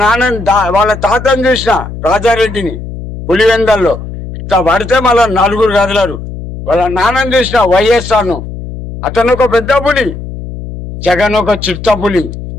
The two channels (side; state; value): left; noise; hum, 10 dB below the sound